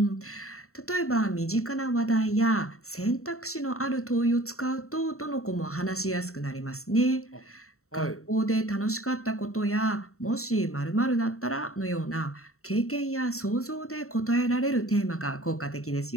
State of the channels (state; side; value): late; right; 0.64 ms